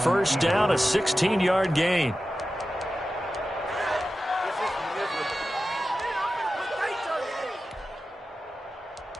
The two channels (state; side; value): normal; both; correlation 0.93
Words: down, a 16-yard gain.